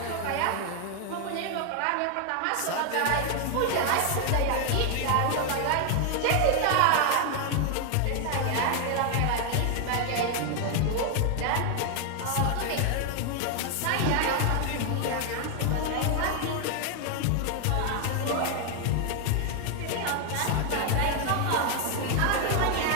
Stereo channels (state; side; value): different; both; correlation 0.00